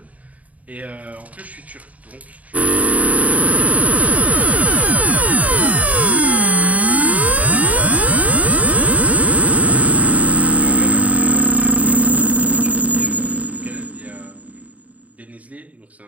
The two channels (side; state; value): left; late; 0.070 ms